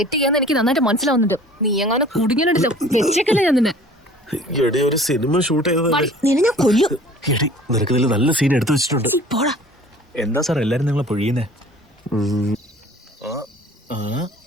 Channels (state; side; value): normal; both; correlation 0.49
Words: ചെയ്യാന്ന് എനിക്ക് നന്നായിട്ട് മനസ്സിലാവുന്നുണ്ട്. നീ എങ്ങനെ കുടുങ്ങിയിട്ടുണ്ടല്ലോ. വെച്ചേക്കല്ലേ ഞാൻ നിന്നെ. എടി, ഒരു സിനിമ ഷൂട്ട് ചെയ്തതല്ലേ. നിന്നെ ഞാൻ കൊല്ലും. എടി, നിനക്ക് ഇതിൽ നല്ല സീൻ എടുത്തു വെച്ചിട്ടുണ്ട്. പോടാ. എന്താ സാർ എല്ലാരും നിങ്ങളെ പൊഴിയുന്നേ?